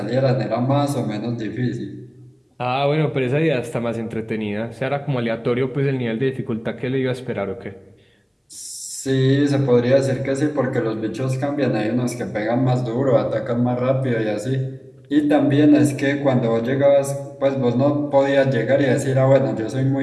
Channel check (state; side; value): identical; both; correlation 1.00